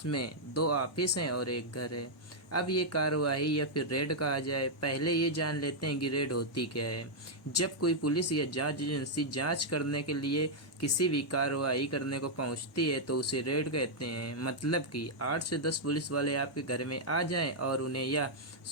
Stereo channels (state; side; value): normal; both; correlation -0.04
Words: 2 ऑफिस हैं और एक घर है। अब ये कार्रवाई या फिर रेड कहा जाए, पहले ये जान लेते हैं कि रेड होती क्या है। जब कोई पुलिस या जांच एजेंसी जांच करने के लिए किसी भी कार्रवाई करने को पहुंचती है तो उसे रेड कहते हैं। मतलब कि 8 से 10 पुलिस वाले आपके घर में आ जाएं और उन्हें यह